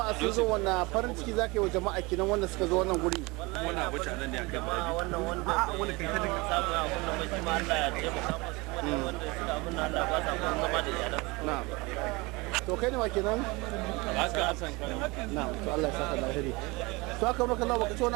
sun zo wannan farin ciki za ka yi wa jama'a kenan wanda suka zo wannan guri. wannan abu nan ne akai ma wannan wanda wani kai ta samu a wannan mai kuma Allah ya taimaka musu kuma wanda suka abin Allah ba sa kun zama da iyalan Na'am. To kai ne wa kenan? haka Hassan Na'am. To Allah ya saka da alheri. To aka maka Allah baka ci wani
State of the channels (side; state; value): left; quieter; 24.8 dB